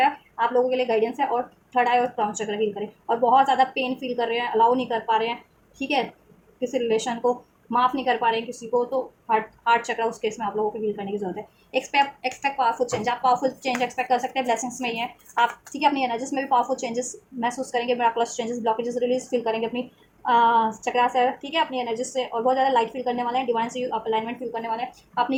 आप लोगों के लिए गाइडेंस है, और थर्ड आई और क्राउन चक्र हील करें, और बहुत ज़्यादा पेन फील कर रहे हैं, अलाउ नहीं कर पा रहे हैं, ठीक है, किसी रिलेशन को माफ़ नहीं कर पा रहे हैं किसी को, तो हार्ट चक्र उस केस में आप लोगों को हील करने की जरूरत है। एक्सपेक्ट पावरफुल चेंज, आप पावरफुल चेंज एक्सपेक्ट कर सकते हैं, ब्लेसिंग्स में ही है आप, ठीक है, अपनी एनर्जीज में भी पावरफुल चेंजेस महसूस करेंगे, miraculous changes, blockages release feel करेंगे अपनी चक्रा से, ठीक है, अपनी एनर्जीज से, और बहुत ज़्यादा लाइट फील करने वाले हैं, डिवाइन से आप अलाइनमेंट फील करने वाले हैं, अपनी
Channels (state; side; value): identical; both; correlation 1.00